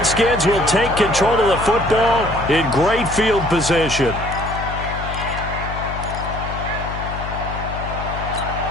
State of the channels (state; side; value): noise; left; hum, 7 dB below the sound